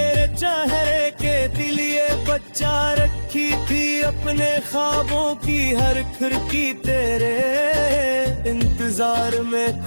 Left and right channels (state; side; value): inverted; both; correlation -1.00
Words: चेहरे के लिए बचा रखी थी। अपने ख्वाबों की हर खिड़की तेरे इंतजार में